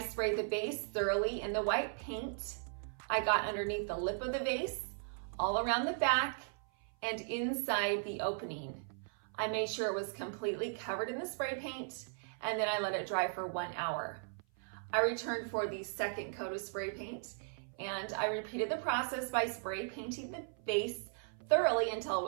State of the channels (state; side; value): silent; left; 53 dB below the other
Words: the base thoroughly in the white paint. I got underneath the lip of the vase, all around the back, and inside the opening. I made sure it was completely covered in the spray paint, and then I let it dry for 1 hour. I returned for the second coat of spray paint, and I repeated the process by spray painting the vase thoroughly until it